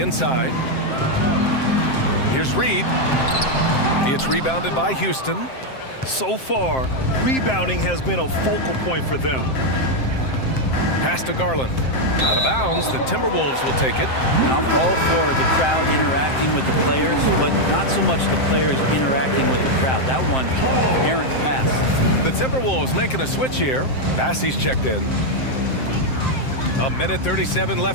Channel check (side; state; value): right; late; 7.7 ms